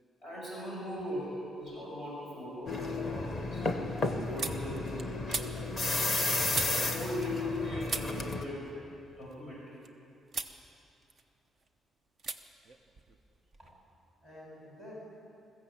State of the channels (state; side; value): normal; both; correlation 0.72